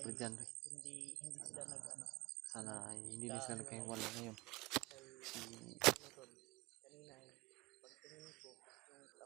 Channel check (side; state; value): left; quieter; 22.4 dB